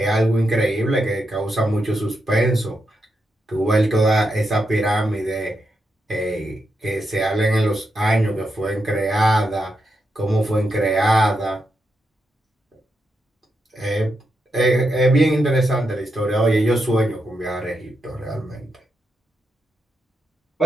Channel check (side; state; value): both; normal; correlation 0.84